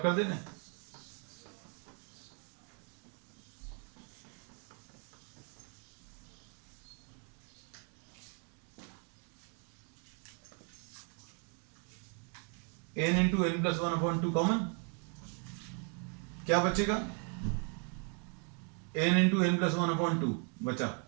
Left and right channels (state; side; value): quieter; left; 39.2 dB